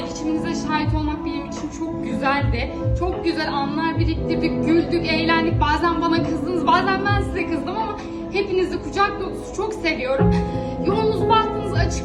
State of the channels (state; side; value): identical; both; correlation 1.00